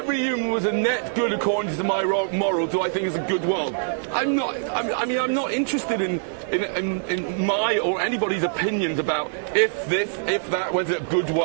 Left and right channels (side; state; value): left; silent; 63 dB below the other